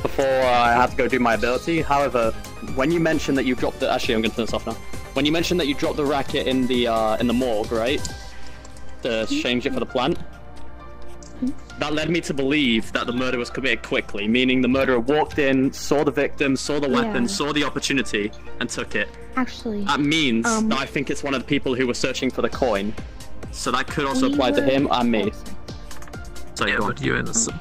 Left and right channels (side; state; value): both; identical; correlation 1.00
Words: before I had to go do my ability. However, when you mentioned that you dropped the... Actually, I'm going to turn this off now. When you mentioned that you dropped the racket in the morgue, right? To change it for the plant? That led me to believe that the murder was committed quickly, meaning the murderer walked in, saw the victim, saw the weapon, saw the opportunity, and took it. Actually. That means that I think it's one of the people who were searching for the coin. So that could also apply to him and me. So yeah, but you're